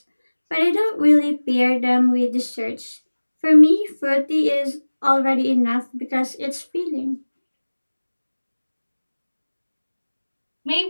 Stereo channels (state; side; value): inverted; both; correlation -1.00